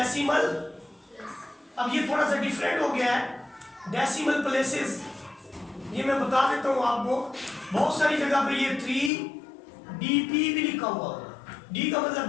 अब ये थोड़ा सा डिफरेंट हो गया है डेसिमल प्लेसेस। ये मैं बता देता हूँ आपको, बहुत सारी जगह पे ये 3DP भी लिखा हुआ होगा। D का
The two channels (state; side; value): drops out; right; at 9.1 s